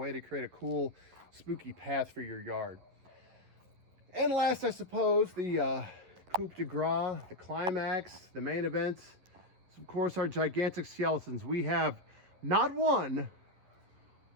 to create a cool, spooky path for your yard. And last, I suppose, the coup de grace, the climax, the main event, is of course our gigantic skeletons. We have not one,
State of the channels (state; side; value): late; left; 11 ms